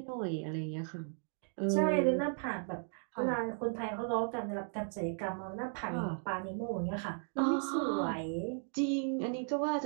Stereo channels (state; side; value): silent; left; 54 dB below the other